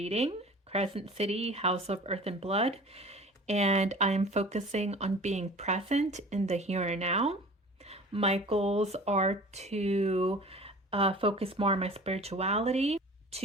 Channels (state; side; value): normal; both; correlation 0.42